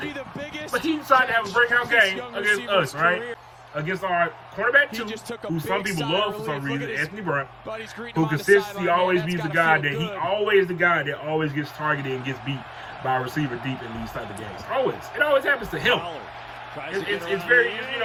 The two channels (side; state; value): both; identical; correlation 1.00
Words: But he decided to have a breakout game against us, right? Against our cornerback 2, who some people love for some reason, Anthony Brown, who consistently always be the guy that always gets targeted and gets beat by a receiver deep in these type of games. Always. It always happens to him. It's very, you